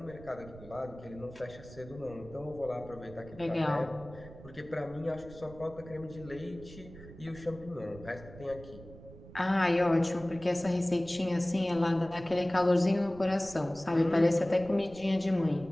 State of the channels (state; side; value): noise; right; rumble, 17 dB below the sound